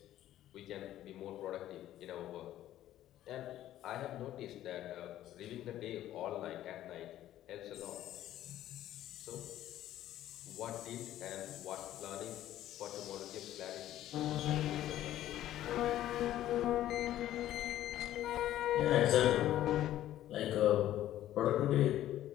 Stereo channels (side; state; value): right; quieter; 13.0 dB